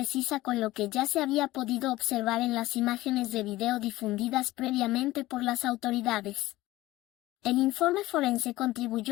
con lo que ya se había podido observar en las imágenes de video difundidas previamente por las autoridades. El informe forense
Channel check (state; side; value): quieter; right; 17.6 dB